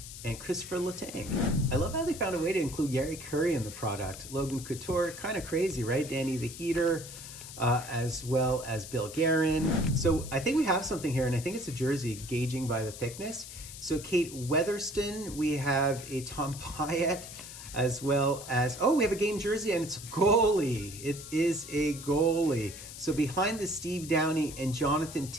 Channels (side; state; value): left; noise; hiss, 13 dB below the sound